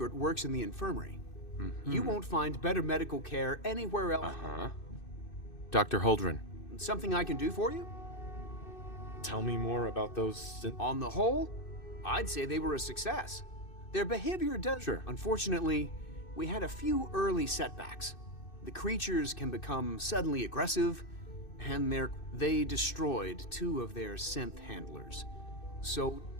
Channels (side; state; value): right; late; 2.6 ms